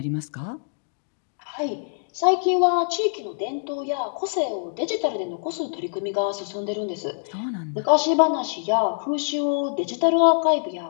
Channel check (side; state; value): right; silent; digital silence